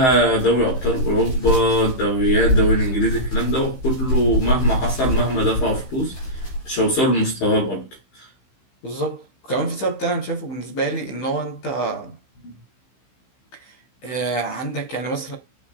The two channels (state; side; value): late; right; 16 ms